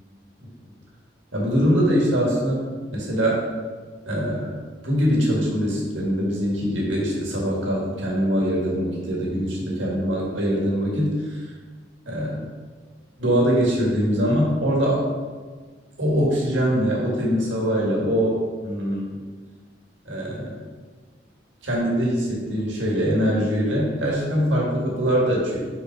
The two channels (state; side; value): normal; both; correlation 0.61